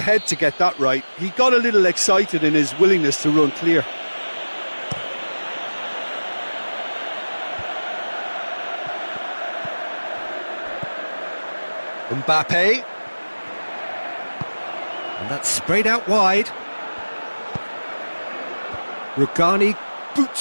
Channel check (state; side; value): inverted; both; correlation -1.00